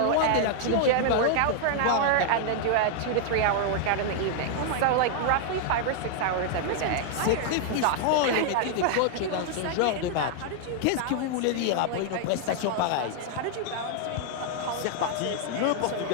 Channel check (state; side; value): different; both; correlation 0.00